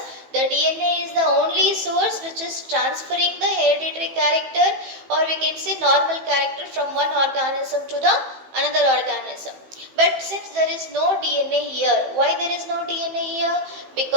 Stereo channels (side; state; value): left; late; 15 ms